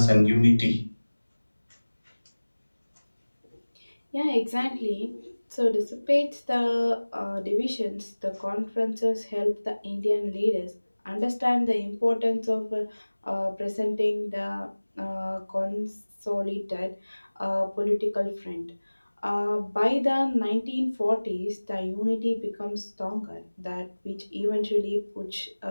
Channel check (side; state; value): both; inverted; correlation -1.00